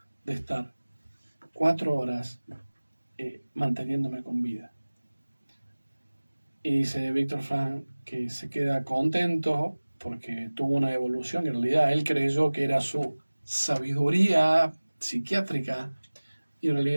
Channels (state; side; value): inverted; both; correlation -1.00